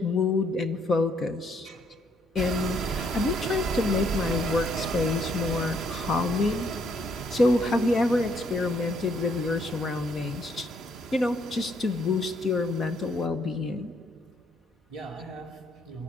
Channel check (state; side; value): normal; both; correlation 0.70